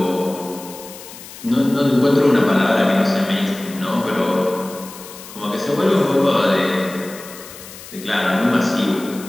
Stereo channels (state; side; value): noise; left; hiss, 16 dB below the sound